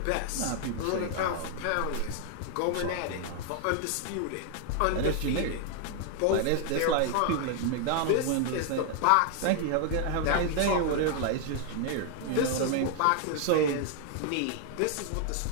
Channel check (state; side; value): different; both; correlation 0.00